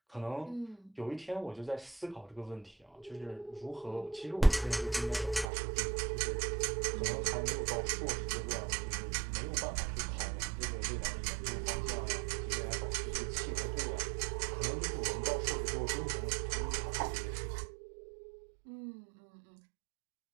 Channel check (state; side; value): drops out; left; at 5.5 s